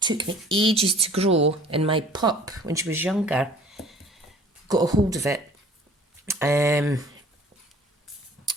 took me ages to grow, and my pup, when she was younger, got a hold of it and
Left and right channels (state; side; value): normal; both; correlation 0.50